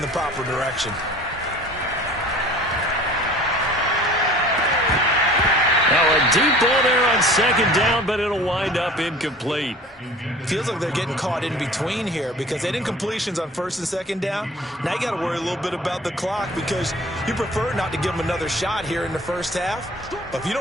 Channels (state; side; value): normal; both; correlation 0.45